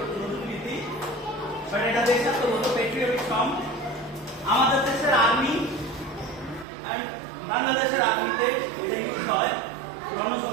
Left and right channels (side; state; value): left; drops out; at 6.7 s